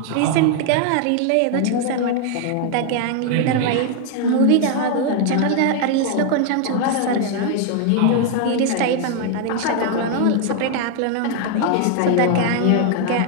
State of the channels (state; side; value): different; both; correlation 0.00